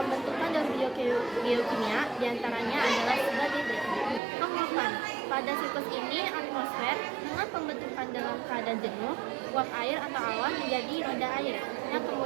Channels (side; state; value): left; drops out; at 4.2 s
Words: daur biokimia diantaranya adalah sebagai berikut. Penguapan. Pada siklus ini, atmosfer dengan pembentukan dalam keadaan jenuh, uap air atau awan menjadi roda air yang